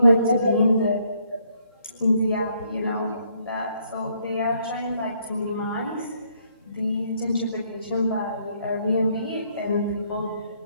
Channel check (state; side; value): inverted; both; correlation -0.69